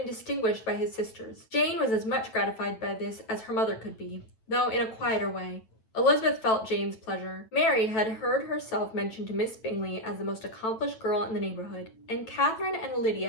distinguished by his sisters. Jane was as much gratified by this as her mother could be, though in a quieter way. Elizabeth felt Jane's pleasure. Mary had heard herself mentioned to Miss Bingley as the most accomplished girl in the neighbourhood, and Catherine and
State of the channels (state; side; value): late; right; 9.1 ms